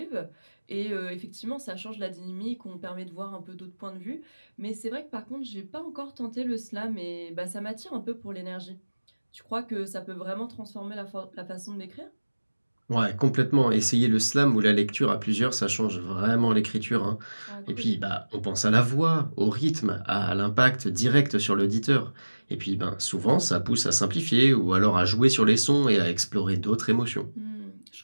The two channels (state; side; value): inverted; both; correlation -1.00